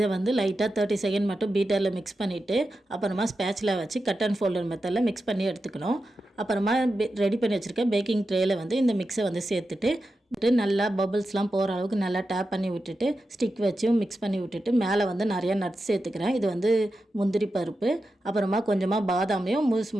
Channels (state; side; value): normal; both; correlation 0.90